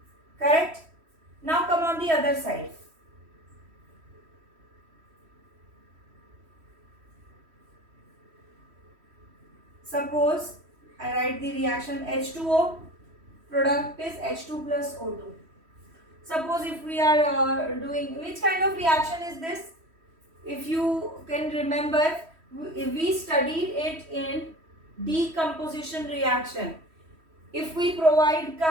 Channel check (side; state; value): left; late; 3.1 ms